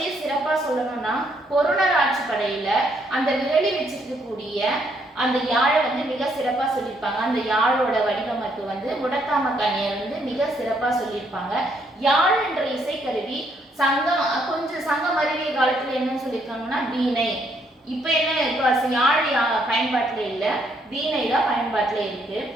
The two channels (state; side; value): normal; both; correlation 0.71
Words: சிறப்பா சொல்லணும்னா, பொருணர் ஆட்சி படையில அந்த விரலி வச்சிருக்கக்கூடிய அந்த யாழை மிக சிறப்பா சொல்லியிருப்பாங்க. அந்த யாழோட வடிவமைப்பு முடத்தாம கண்ணியர் மிக சிறப்பா சொல்லியிருப்பாங்க. யாழ் என்ற இசைக்கருவி கொஞ்சம் சங்கம் அறிவிய காலத்துல என்னன்னு சொல்லியிருக்காங்கன்னா வீணை. இப்ப என்ன, இப்ப யாழ் பயன்பாட்டுல இல்ல, வீணை தான் பயன்பாட்டுல இருக்கு.